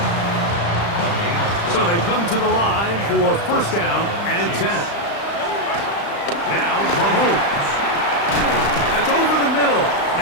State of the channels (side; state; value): right; late; 35 ms